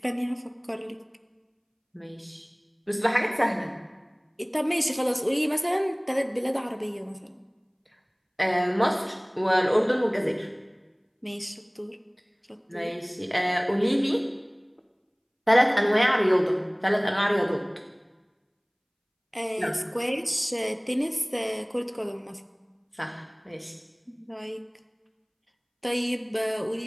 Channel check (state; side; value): identical; both; correlation 1.00